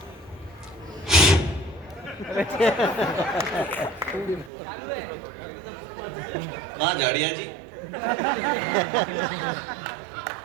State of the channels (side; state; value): left; drops out; at 4.5 s